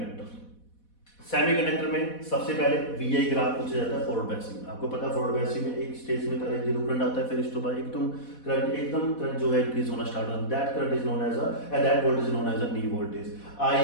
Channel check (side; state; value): right; late; 4.1 ms